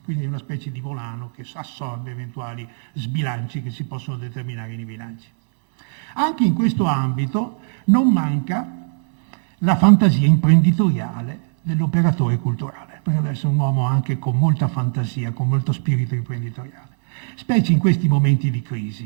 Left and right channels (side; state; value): left; silent; digital silence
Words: quindi una specie di volano che assorbe eventuali sbilanci che si possono determinare nei bilanci. Anche in questo ambito non manca la fantasia imprenditoriale dell'operatore culturale, perché deve essere un uomo anche con molta fantasia, con molto spirito imprenditoriale, specie in questi momenti di